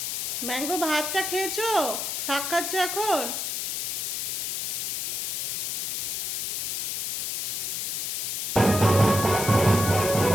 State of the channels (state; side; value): noise; left; hiss, 1 dB below the sound